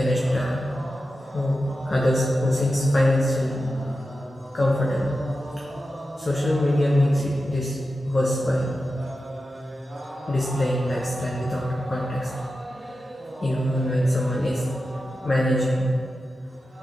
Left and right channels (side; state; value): both; normal; correlation 0.91